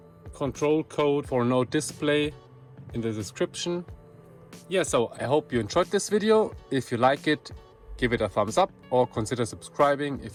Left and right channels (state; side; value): identical; both; correlation 1.00